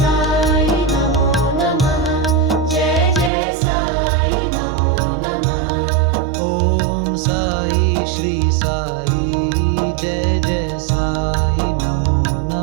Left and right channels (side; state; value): left; drops out; at 3.3 s